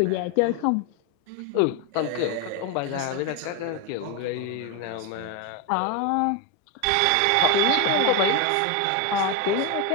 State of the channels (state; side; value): different; both; correlation 0.02